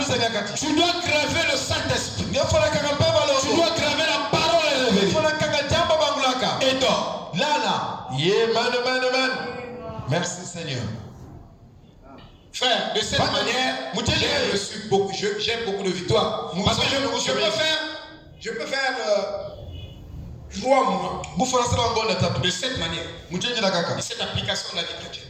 Tu dois graver le Saint-Esprit. Tu dois graver la parole révélée. Et toi, merci Seigneur. Frère, de cette manière, j'ai beaucoup de victoires. Parce que je peux faire 3 mois de cette manière. De cette application de la vie chrétienne.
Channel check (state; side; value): identical; both; correlation 1.00